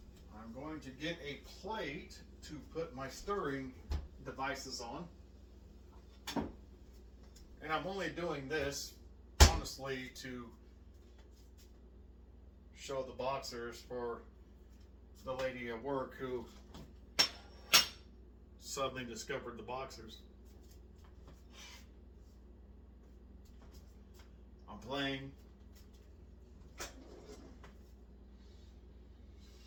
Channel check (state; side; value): identical; both; correlation 1.00